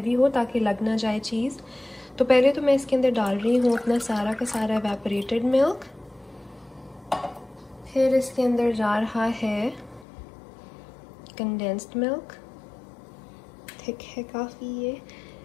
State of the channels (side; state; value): right; drops out; at 10.1 s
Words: हो ताकि लग ना जाए चीज़। तो पहले तो मैं इसके अंदर डाल रही हूँ अपना सारा का सारा एवेपोरेटेड मिल्क। फिर इसके अंदर जा रहा है कंडेंस्ड मिल्क, थिक है काफ़ी ये।